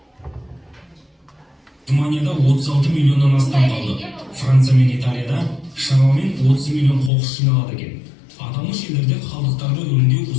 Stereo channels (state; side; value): drops out; right; at 7.1 s